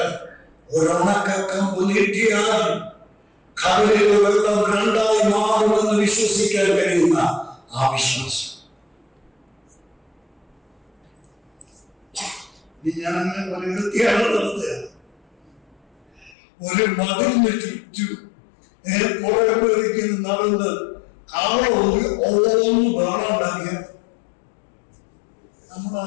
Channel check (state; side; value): drops out; right; at 16.4 s